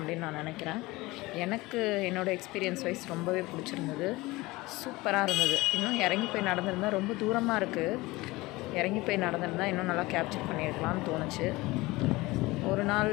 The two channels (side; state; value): right; quieter; 20.9 dB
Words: நான் நினைக்கிறேன். எனக்கு என்னோடய எக்ஸ்பீரியன்ஸ் வைஸ் ரொம்பவே பிடிச்சிருந்தது, சூப்பராக இருந்தது. இன்னும் இறங்கி போய் நடந்திருந்தால், ரொம்ப தூரமாக இருக்குது, இறங்கி போய் நடந்திருந்தால் இன்னும் நல்லா கேப்சர் பண்ணியிருக்கலாம்னு தோணுச்சு. ஒரு நாள்